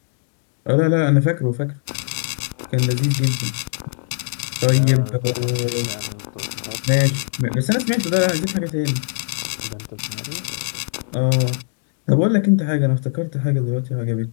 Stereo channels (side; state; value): right; silent; digital silence